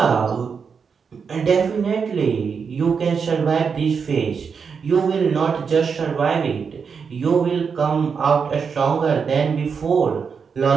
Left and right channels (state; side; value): quieter; left; 6.0 dB